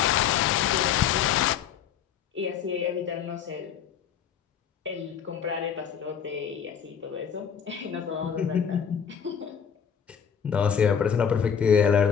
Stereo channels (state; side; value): quieter; right; 7.9 dB